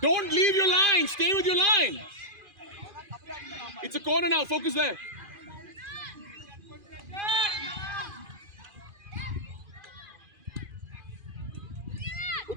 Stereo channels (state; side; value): late; left; 2.5 ms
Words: Don't leave your line. Stay with your line. It's a corner now. Focus there.